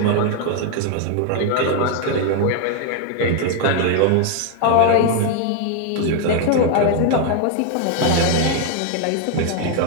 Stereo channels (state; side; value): different; both; correlation 0.00